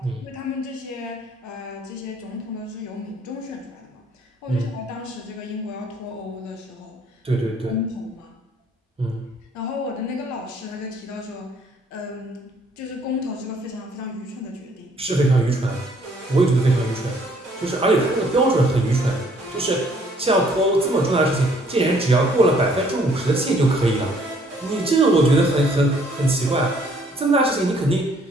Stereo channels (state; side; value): normal; both; correlation 0.62